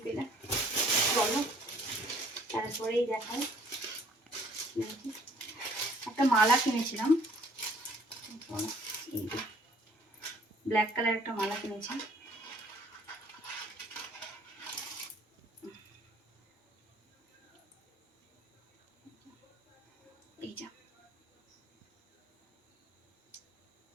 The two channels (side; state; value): both; normal; correlation 0.58